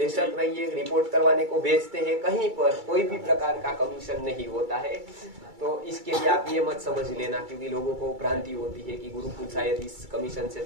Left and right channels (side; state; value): left; late; 2.3 ms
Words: रहिए, रिपोर्ट करवाने को भेजते हैं, कहीं पर कोई भी प्रकार का कमीशन नहीं होता है। तो इसके लिए आप ये मत समझ लेना, क्योंकि लोगों को भ्रांति होती है कि गुरुकुल शायद इस कमीशन से